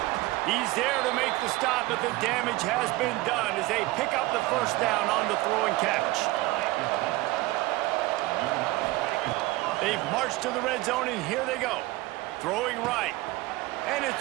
He's there to make the stop, but the damage has been done as they pick up the first down on the throw and catch. They've marched to the red zone, and here they go. Throwing right. And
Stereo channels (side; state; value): left; quieter; 19.4 dB